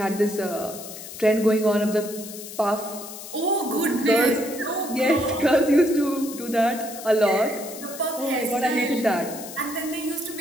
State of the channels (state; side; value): noise; left; hiss, 12 dB below the sound